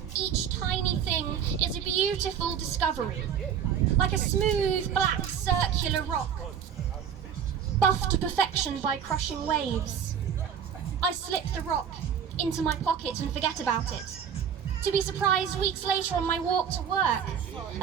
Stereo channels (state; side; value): quieter; left; 8.2 dB